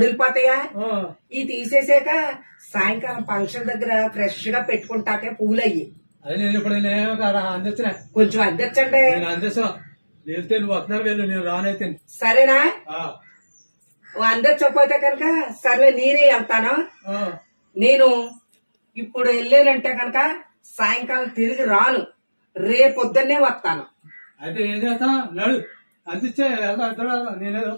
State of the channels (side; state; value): both; inverted; correlation -1.00